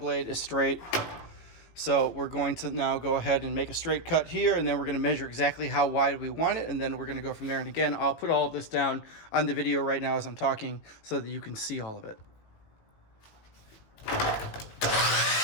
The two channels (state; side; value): late; right; 18 ms